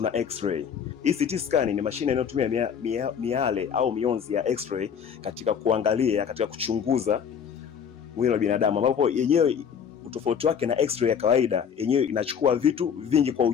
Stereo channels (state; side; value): quieter; right; 7.5 dB